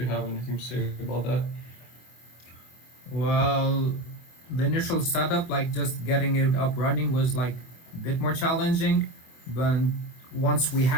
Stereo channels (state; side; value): late; right; 25 ms